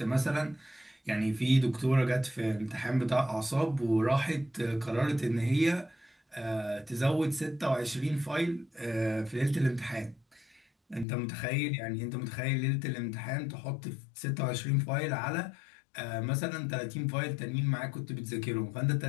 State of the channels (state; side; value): drops out; right; at 11.1 s